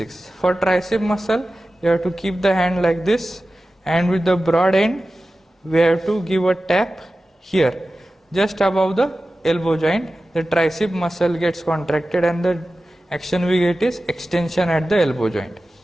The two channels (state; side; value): normal; both; correlation 0.95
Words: For tricep muscle, you have to keep the hand like this, and with the broad end, we have to give a tap here, just above the elbow joint. The tricep muscle gets contracted and the action we get is extension at the elbow joint.